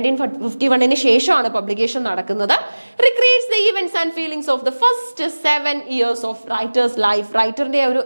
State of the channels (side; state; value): both; inverted; correlation -1.00